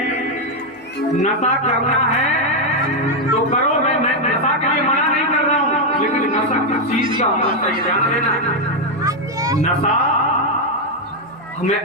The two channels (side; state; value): both; normal; correlation 0.02